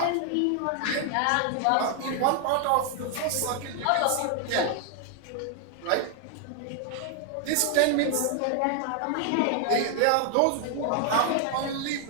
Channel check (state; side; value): different; both; correlation 0.00